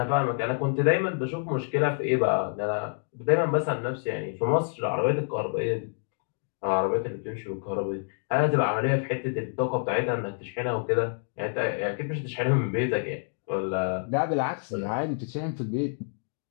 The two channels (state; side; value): silent; right; digital silence